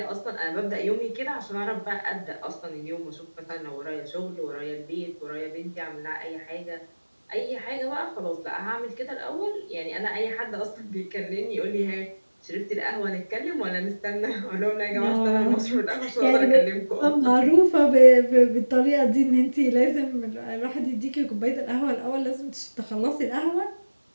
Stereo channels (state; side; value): inverted; both; correlation -1.00